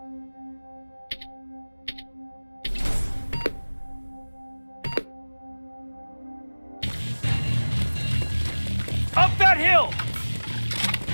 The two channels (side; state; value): both; inverted; correlation -1.00